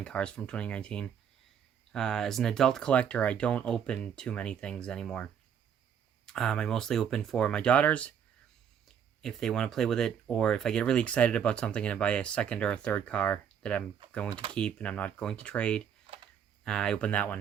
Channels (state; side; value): quieter; left; 8.2 dB